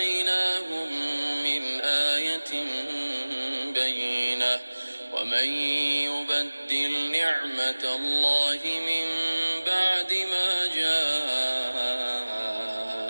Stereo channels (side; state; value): both; inverted; correlation -1.00